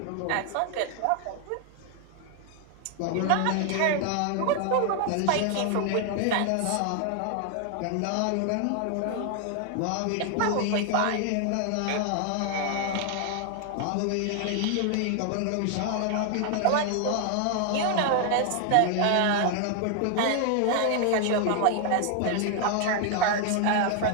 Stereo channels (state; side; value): different; both; correlation 0.00